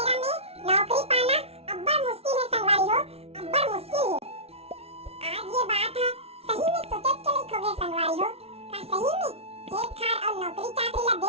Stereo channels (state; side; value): late; left; 0.30 ms